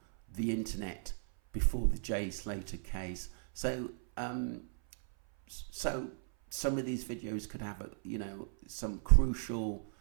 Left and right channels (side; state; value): left; silent; 54 dB below the other